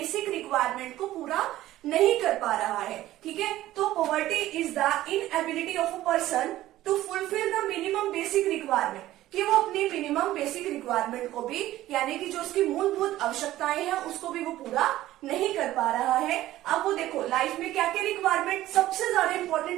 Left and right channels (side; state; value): left; quieter; 14.9 dB